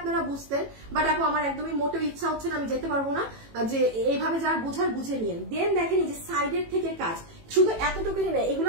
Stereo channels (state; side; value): late; left; 18 ms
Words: বুঝতেন, বাট আপু আমার একদমই মোটেও ইচ্ছা হচ্ছে না, আমি যেতে পারবো না, যে এইভাবে যার বুঝার বুঝে নিন। দেন দেখেন এই যে সাইডের থেকে কাজ, শুধু এতটুকুনি নেই,